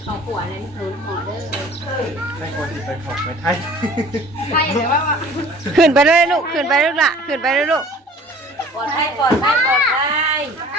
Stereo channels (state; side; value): normal; both; correlation 0.48